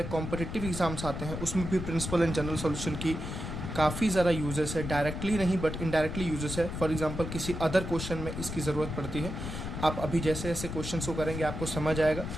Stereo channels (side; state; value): left; noise; rumble, 6 dB below the sound